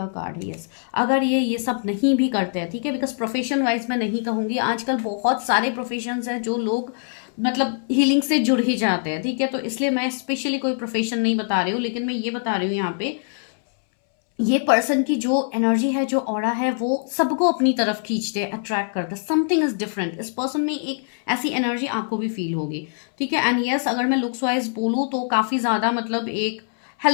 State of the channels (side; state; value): right; silent; 63 dB below the other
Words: कार्ड है। यस, अगर ये सब नहीं भी करते हैं, ठीक है? बिकॉज प्रोफेशन वाइज मैं नहीं कहूंगी, आजकल बहुत सारे प्रोफेशंस हैं जो लोग मतलब हीलिंग से जुड़ ही जाते हैं, ठीक है? तो इसलिए मैं स्पेशली कोई प्रोफेशन नहीं बता रही हूँ, लेकिन मैं ये बता रही हूँ यहाँ पे ये पर्सन की जो एनर्जी है, जो ऑरा है, वो सबको अपनी तरफ खींचते हैं, अट्रैक्ट करते हैं। Something is different. इस पर्सन में एक ऐसी एनर्जी आपको भी फील होगी, ठीक है? एंड यस, अगर मैं लुक्स वाइज बोलूँ तो काफी ज्यादा मतलब एक